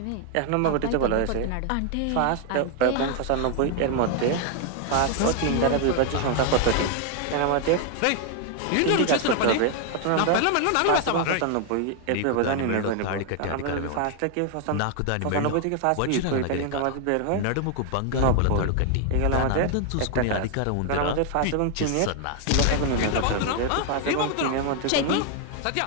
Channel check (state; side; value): different; both; correlation 0.00